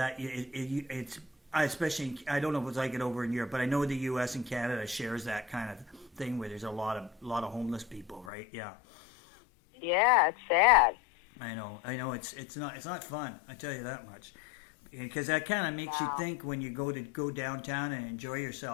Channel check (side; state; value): right; drops out; at 8.3 s